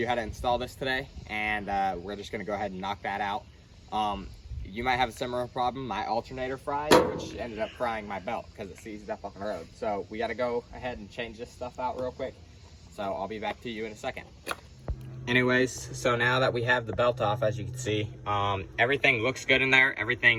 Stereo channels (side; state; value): both; identical; correlation 1.00